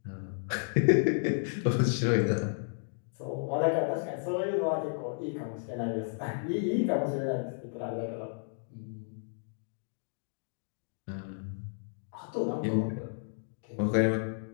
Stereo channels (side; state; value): right; silent; digital silence